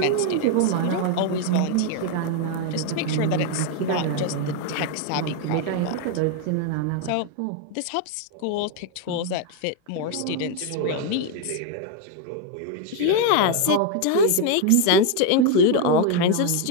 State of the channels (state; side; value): different; both; correlation 0.01